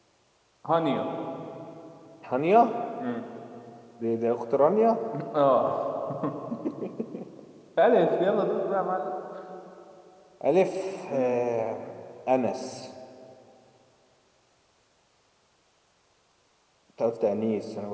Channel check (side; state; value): both; identical; correlation 1.00